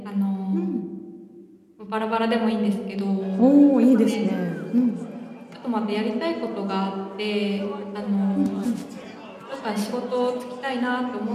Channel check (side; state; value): both; identical; correlation 1.00